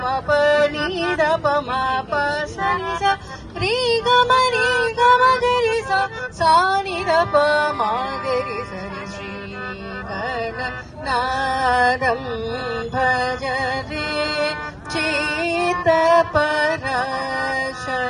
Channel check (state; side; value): identical; both; correlation 1.00